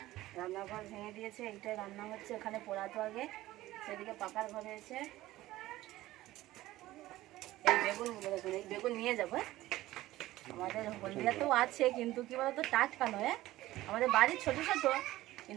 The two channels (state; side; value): quieter; left; 16.4 dB